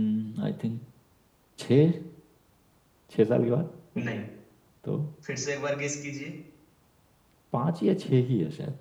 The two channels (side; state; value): both; identical; correlation 1.00